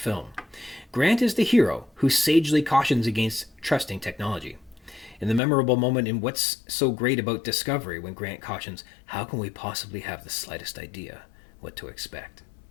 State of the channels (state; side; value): drops out; right; at 5.4 s